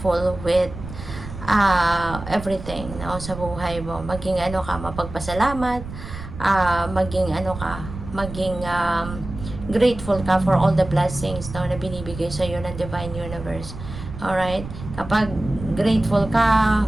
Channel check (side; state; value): right; noise; rumble, 11 dB below the sound